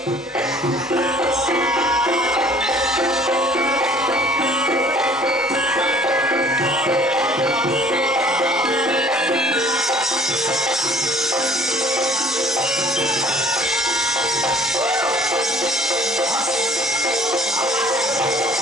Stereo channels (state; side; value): normal; both; correlation 0.53